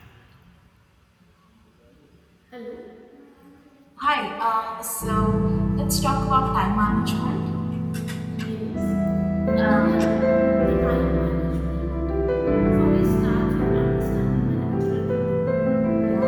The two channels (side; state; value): both; identical; correlation 1.00